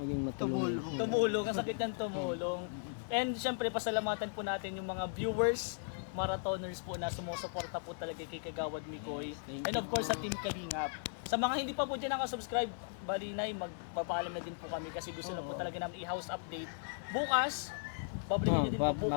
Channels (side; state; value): right; silent; digital silence